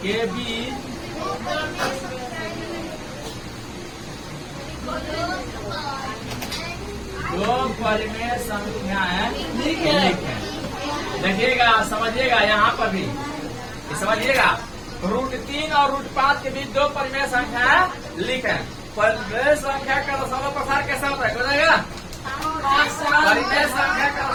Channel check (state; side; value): identical; both; correlation 1.00